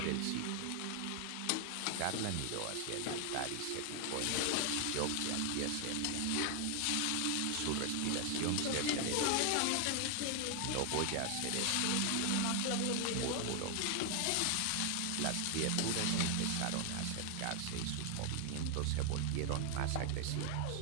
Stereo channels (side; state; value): both; different; correlation 0.00